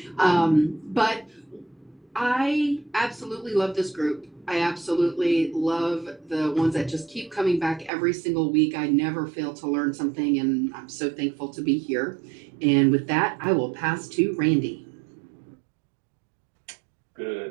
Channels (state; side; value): drops out; left; at 7.9 s